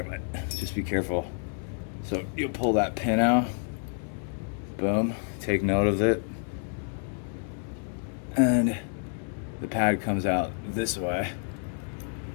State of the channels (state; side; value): silent; right; 59 dB below the other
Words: but just be careful. So you'll pull that pin out, boom, take note of it, and the pad comes out this way,